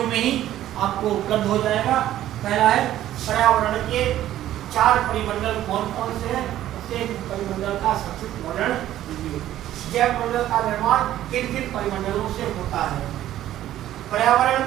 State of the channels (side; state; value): left; quieter; 13.0 dB